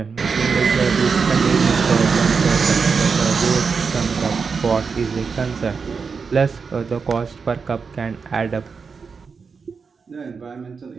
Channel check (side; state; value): left; quieter; 5.3 dB